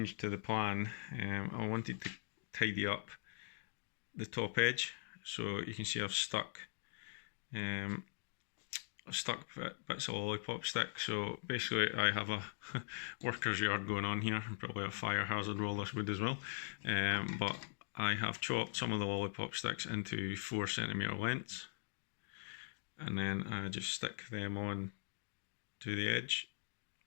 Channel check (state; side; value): silent; right; digital silence